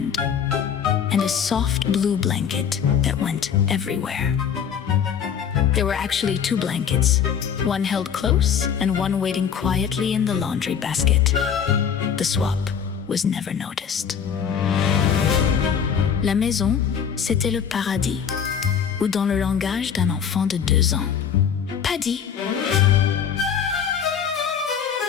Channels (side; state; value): right; quieter; 7.7 dB